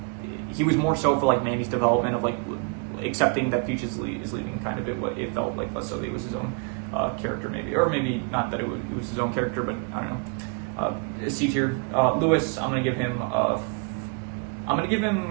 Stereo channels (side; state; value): left; quieter; 34.4 dB